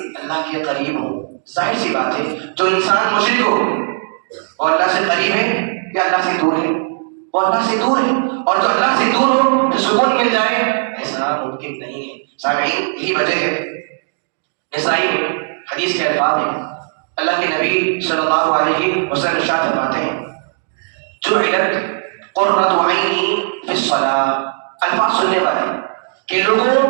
اللہ کے قریب ہو۔ ظاہر سی بات ہے جو انسان مشرک ہو وہ اللہ سے قریب ہے یا اللہ سے دور ہے؟ وہ اللہ سے دور ہے، اور جو اللہ سے دور ہو تو سکون مل جائے، ایسا ممکن نہیں ہے۔ سامعین، یہی وجہ ہے نسائی میں حدیث کے الفاظ ہیں اللہ کے نبی صلی اللہ علیہ وسلم ارشاد فرماتے ہیں جعلت قرۃ عینی فی الصلاۃ، الفاظ سننے والے کہ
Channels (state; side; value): silent; left; digital silence